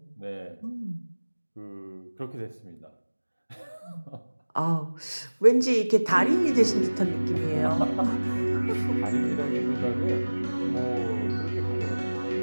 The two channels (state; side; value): inverted; both; correlation -1.00